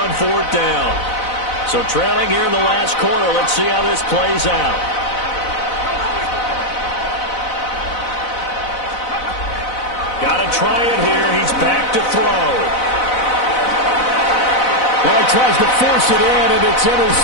on 4th down. So trailing here in the last quarter. Let's see how this plays out. Got to try it here. He's back to throw. Well, he tries to force it in, and it's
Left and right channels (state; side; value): late; right; 4.0 ms